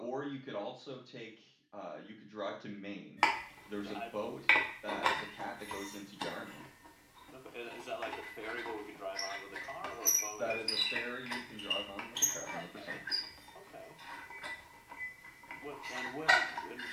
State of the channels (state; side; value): identical; both; correlation 1.00